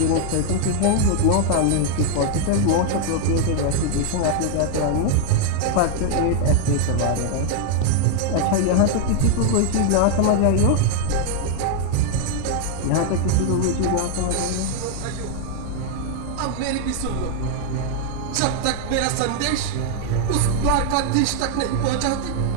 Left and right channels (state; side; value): different; both; correlation 0.00